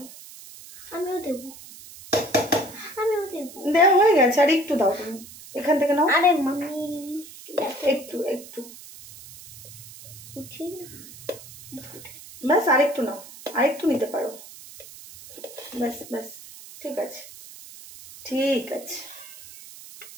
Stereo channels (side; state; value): right; noise; hiss, 17 dB below the sound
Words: দেওয়া হয়ে গেছে, আর একটু দাও তুমি এখান থেকে নাও। আরে মাম্মি একটু ব্যাস, আরেকটু নাও, আরেকটু নিতে পারো। ব্যাস ঠিক আছে